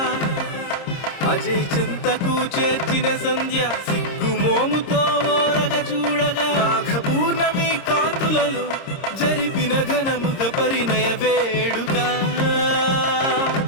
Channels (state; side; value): late; right; 26 ms